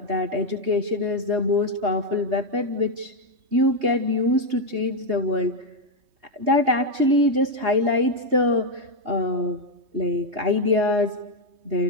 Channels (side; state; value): left; late; 3.2 ms